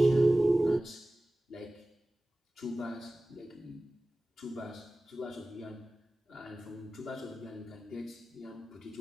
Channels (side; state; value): both; normal; correlation 0.97